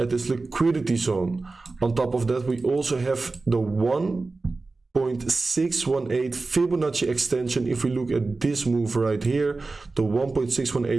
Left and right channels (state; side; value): quieter; left; 3.6 dB